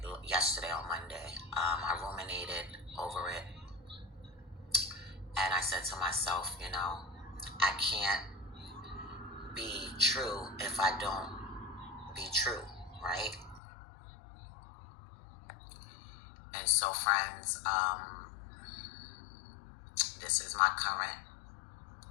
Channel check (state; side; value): drops out; right; at 13.6 s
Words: yesterday on Monday. I ruminated over it. And I said to myself, I can't be true if I don't be true, right? And so, friends, this is my current,